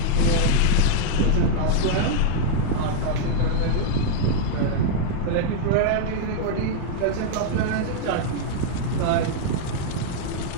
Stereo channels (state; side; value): different; both; correlation -0.01